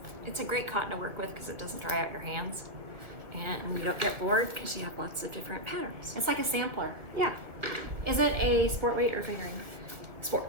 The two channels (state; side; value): late; left; 1.6 ms